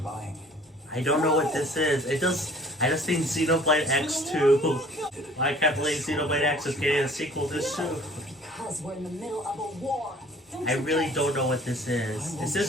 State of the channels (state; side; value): normal; both; correlation 0.52